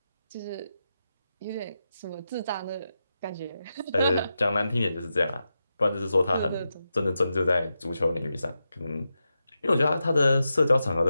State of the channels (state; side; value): inverted; both; correlation -0.89